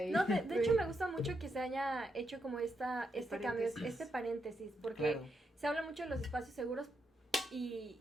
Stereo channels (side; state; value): both; normal; correlation 0.82